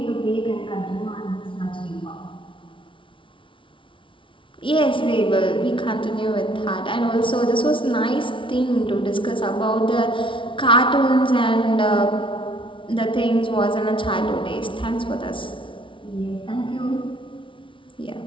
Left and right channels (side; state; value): right; late; 0.25 ms